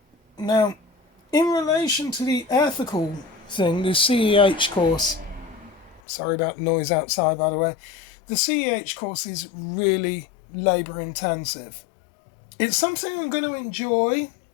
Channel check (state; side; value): drops out; right; at 6.0 s